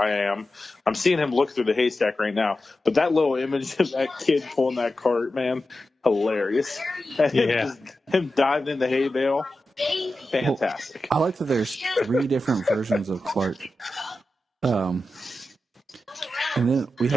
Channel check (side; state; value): both; normal; correlation 0.92